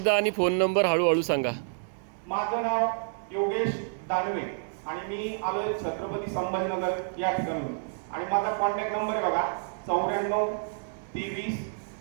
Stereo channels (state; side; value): silent; left; digital silence